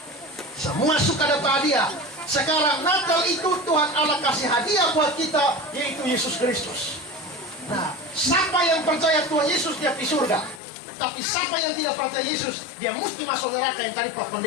Semua suka dapat hadiah. Sekarang Natal itu Tuhan Allah kasih hadiah buat kita, yaitu Yesus Kristus. Nah, siapa yang percaya Tuhan Yesus dia di surga. Tapi siapa yang tidak percaya Yesus, dia mesti masuk neraka. Yang tadi Pak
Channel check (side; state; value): right; drops out; at 10.6 s